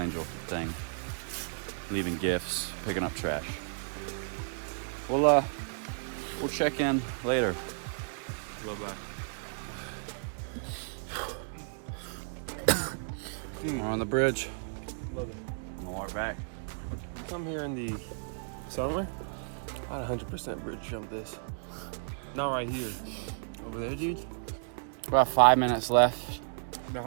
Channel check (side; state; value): left; silent; digital silence